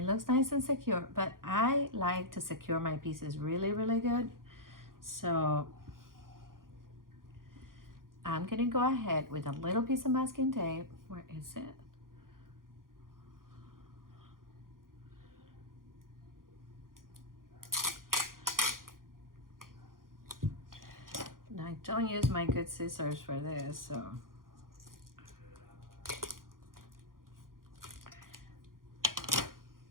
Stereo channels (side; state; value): left; late; 0.91 ms